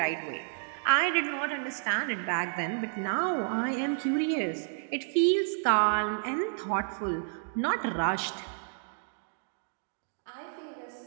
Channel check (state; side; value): silent; left; digital silence